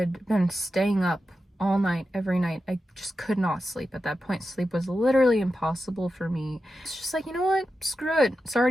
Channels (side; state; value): both; normal; correlation 0.91